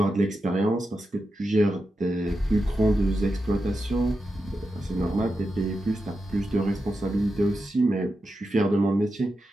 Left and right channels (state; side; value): normal; both; correlation 0.89